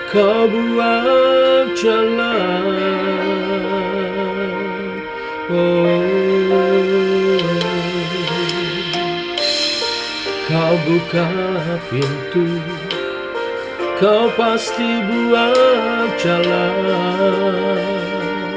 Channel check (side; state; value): both; identical; correlation 1.00